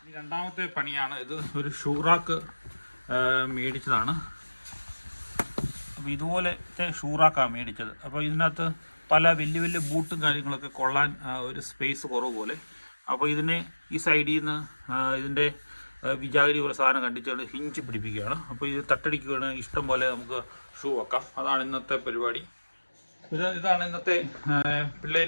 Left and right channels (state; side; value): inverted; both; correlation -1.00